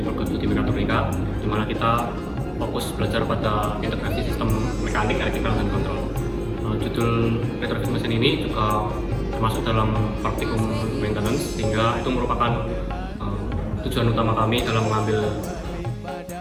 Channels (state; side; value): identical; both; correlation 1.00